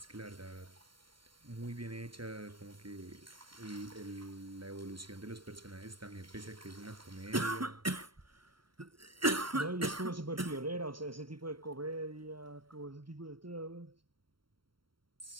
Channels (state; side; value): late; left; 0.73 ms